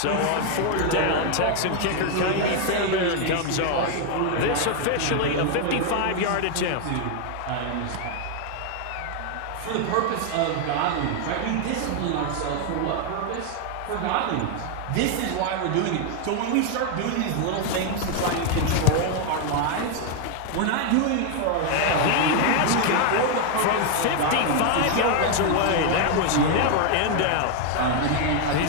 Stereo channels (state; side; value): different; both; correlation 0.00